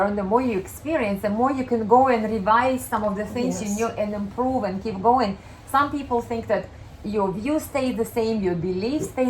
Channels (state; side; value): identical; both; correlation 1.00